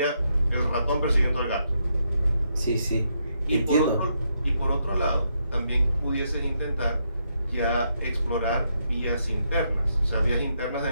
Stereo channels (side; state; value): both; inverted; correlation -0.78